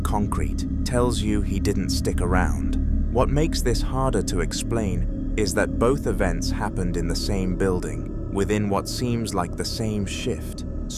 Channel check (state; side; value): identical; both; correlation 1.00